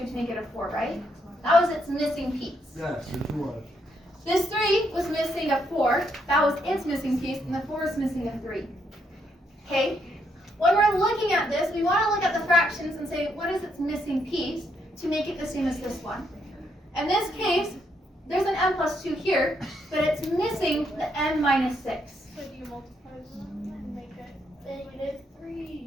to make it a 4, right? That was its missing piece. Yes, it was. This 3 was missing a 4, that was its missing piece, and the 4 is missing a 3. Okay? When we're looking at this, we want to look at the fractions and say, what is its missing piece to make it the same as this one? In this case, there's an m plus 2 here, but it's missing the m minus 6. So do you multiply them and make it -3.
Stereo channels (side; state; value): both; normal; correlation 0.76